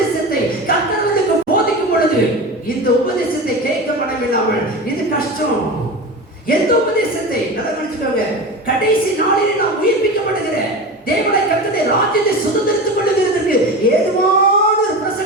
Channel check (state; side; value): normal; both; correlation 0.27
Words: கர்த்தருக்கு போதிக்கும் பொழுது இந்த உபதேசத்தை கேட்க மனமில்லாமல், இது கஷ்டம். எந்த உபதேசத்தை? நல்லா கவனிச்சுக்கோங்க. கடைசி நாளில் நாம் உயிர்ப்பிக்கப்படுகிற தேவனை கர்த்தருடைய ராஜ்யத்தை சுதந்திரித்துக் கொள்ளுகிறதுக்கு ஏதுவான ஒரு